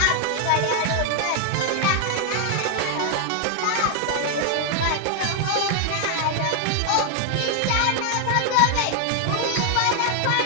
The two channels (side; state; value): both; different; correlation 0.00